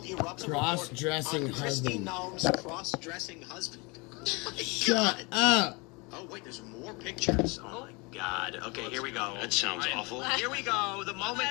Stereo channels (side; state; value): right; quieter; 27.9 dB